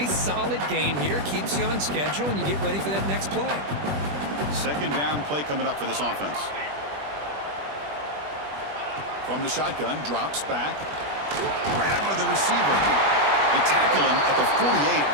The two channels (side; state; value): left; late; 20 ms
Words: solid gain here. Keeps you on schedule, and you get ready for that next play. Second down play coming up for this offense. From the shotgun, drops back. Grab by the receiver. They tackle him at the 48,